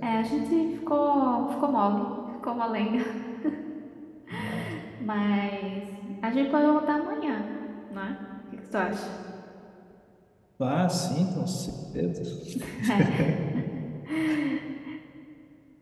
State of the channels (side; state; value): both; identical; correlation 1.00